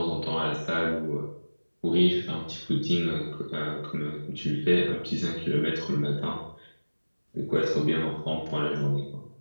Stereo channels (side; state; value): both; inverted; correlation -1.00